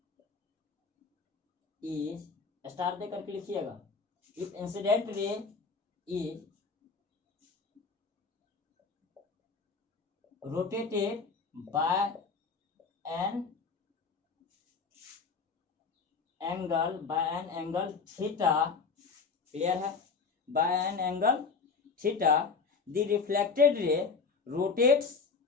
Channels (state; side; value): quieter; right; 5.0 dB